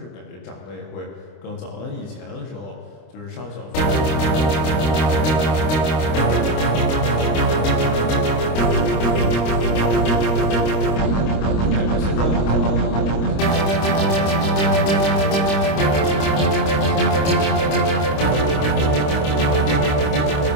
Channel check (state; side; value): late; right; 26 ms